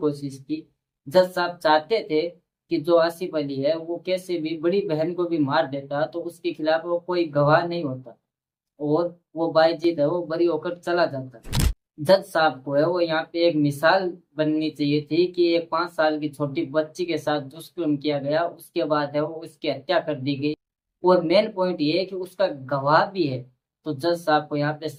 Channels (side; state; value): both; identical; correlation 1.00